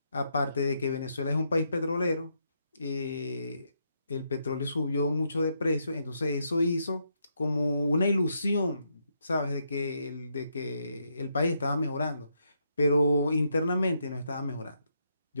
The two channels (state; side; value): inverted; both; correlation -0.78